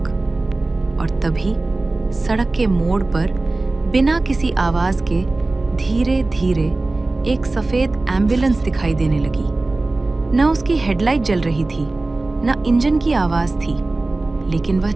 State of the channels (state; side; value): quieter; left; 3.1 dB